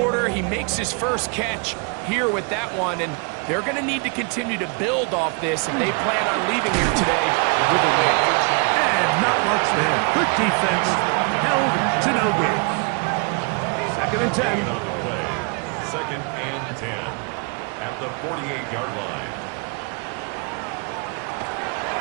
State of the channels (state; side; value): quieter; left; 34.6 dB